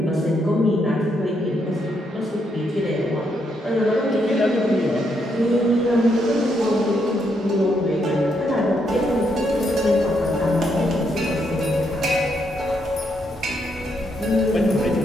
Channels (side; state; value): both; normal; correlation 0.77